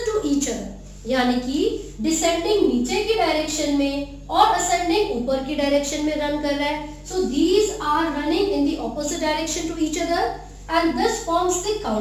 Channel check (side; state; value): both; identical; correlation 1.00